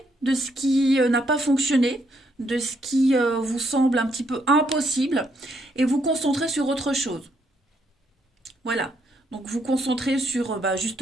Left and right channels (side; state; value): both; normal; correlation 0.74